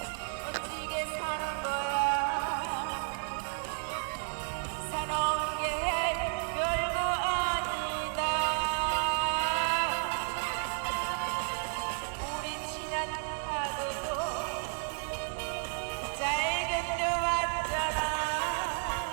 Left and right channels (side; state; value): left; silent; 56 dB below the other